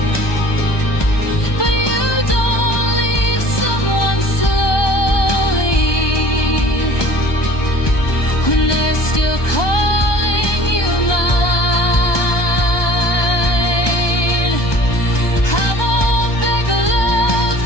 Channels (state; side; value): late; right; 1.2 ms